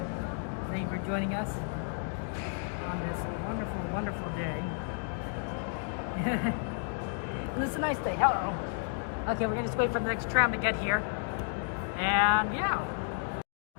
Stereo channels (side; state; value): right; silent; 56 dB below the other